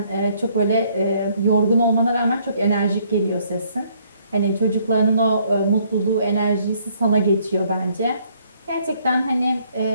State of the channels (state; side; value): inverted; both; correlation -0.66